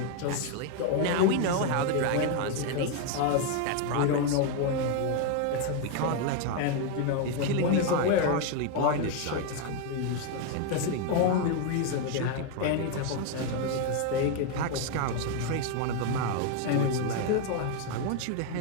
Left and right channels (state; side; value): different; both; correlation 0.01